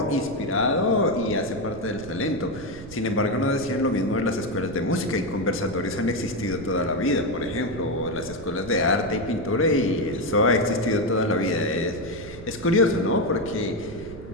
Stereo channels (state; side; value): noise; right; rumble, 15 dB below the sound